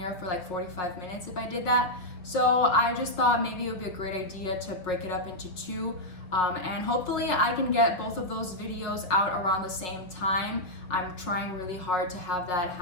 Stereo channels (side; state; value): right; late; 5.7 ms